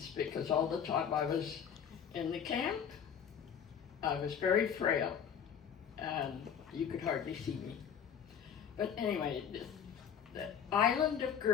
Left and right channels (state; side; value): quieter; right; 8.0 dB